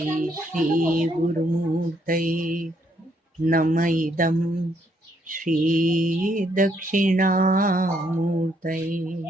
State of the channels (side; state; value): both; normal; correlation 0.72